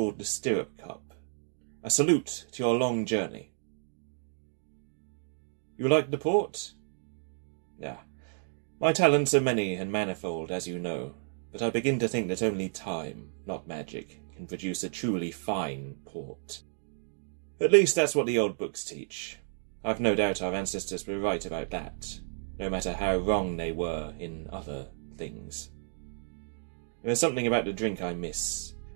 the stirrup cup. A salute to your long journey. You like the port? My talents are many and manifold, as you know, but I begin to think that only time, not magic, can produce a truly fine port. At least that's what the old books teach. I've no doubt our ancestors were right about that, no matter how wrong they were in other things. There is something about the drink I miss,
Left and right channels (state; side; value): silent; left; digital silence